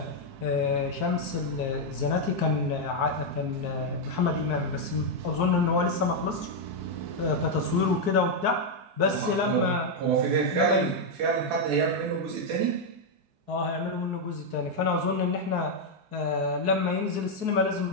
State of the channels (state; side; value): late; left; 4.7 ms